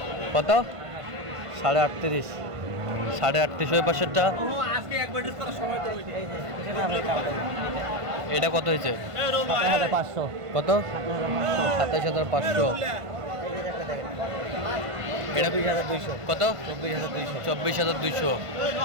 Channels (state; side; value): late; left; 1.5 ms